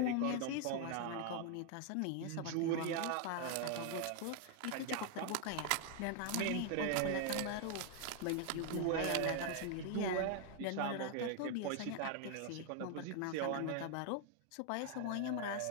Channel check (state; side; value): different; both; correlation 0.00